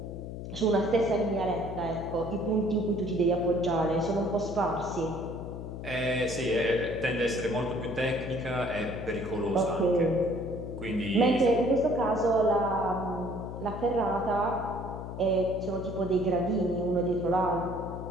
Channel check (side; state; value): left; noise; hum, 8 dB below the sound